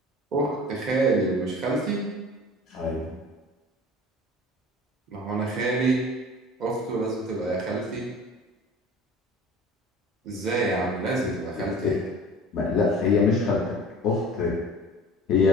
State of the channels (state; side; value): normal; both; correlation 0.41